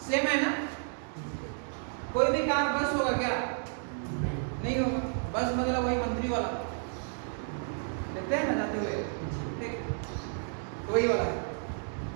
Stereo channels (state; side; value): silent; left; 57 dB below the other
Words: सेम है ना? कोई भी कार बस होगा क्या? नहीं होगा। बस मतलब वही मंत्री वाला, देखते हैं ना जाते हुए, ठीक, तो वही वाला है।